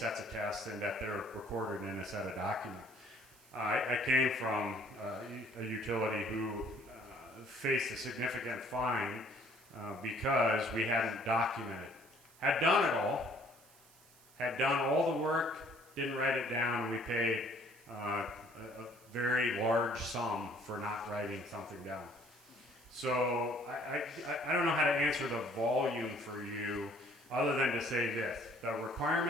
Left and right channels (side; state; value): right; noise; hiss, 25 dB below the sound